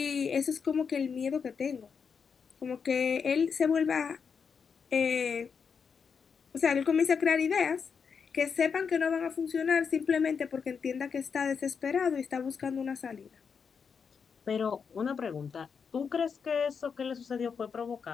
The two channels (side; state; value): right; quieter; 6.2 dB